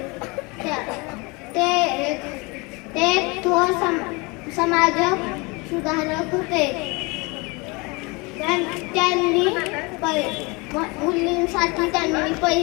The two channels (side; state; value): right; quieter; 27.1 dB